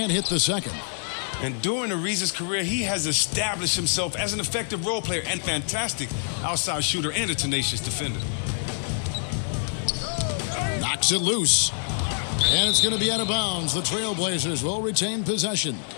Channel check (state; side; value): silent; right; digital silence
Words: hit the second. And during Ariza's career, he has established himself as an effective role player and fantastic outside shooter and a tenacious defender. Knocks it loose. And it's going to be out of bounds. The Trailblazers will retain possession.